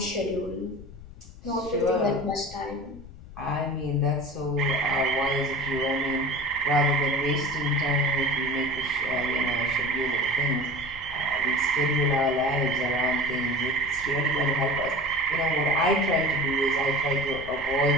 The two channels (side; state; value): left; noise; rumble, 17 dB below the sound